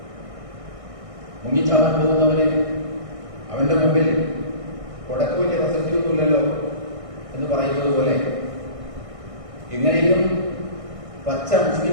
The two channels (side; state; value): left; late; 1.6 ms